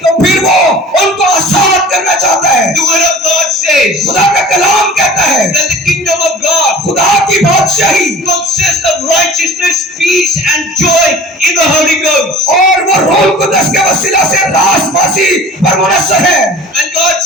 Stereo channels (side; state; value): both; normal; correlation 0.43